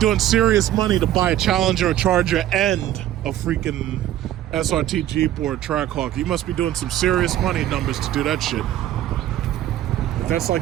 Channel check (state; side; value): quieter; left; 12.8 dB